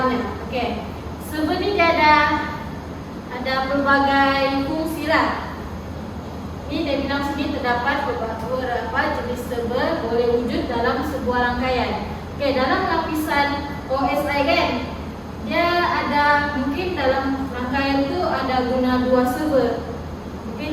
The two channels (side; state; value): both; identical; correlation 1.00